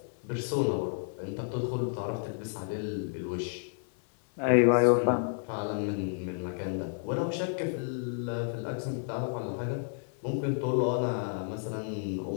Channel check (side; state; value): right; silent; 57 dB below the other